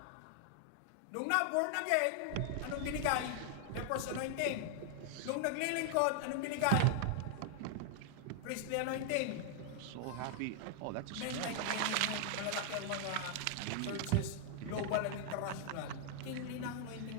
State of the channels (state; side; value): different; both; correlation 0.00